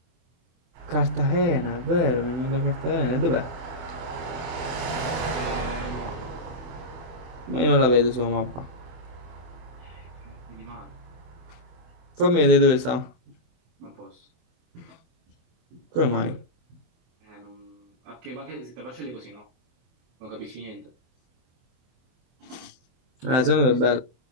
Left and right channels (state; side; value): late; left; 24 ms